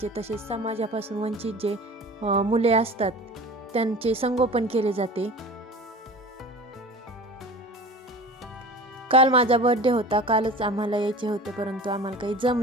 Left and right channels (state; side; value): normal; both; correlation 0.38